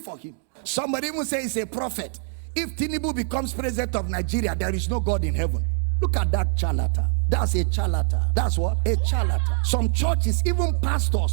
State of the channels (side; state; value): left; silent; 62 dB below the other